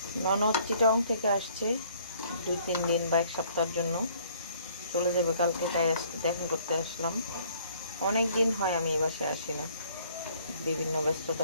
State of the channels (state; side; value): inverted; both; correlation -0.60